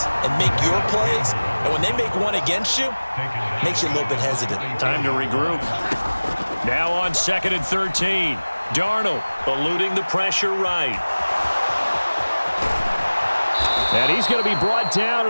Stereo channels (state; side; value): inverted; both; correlation -1.00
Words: and make your plays. And when they make one against you, it makes you a little bit hesitant. Time to regroup. Now on 2nd and 13. Darnold eluding the pressure right. And he's going to be brought down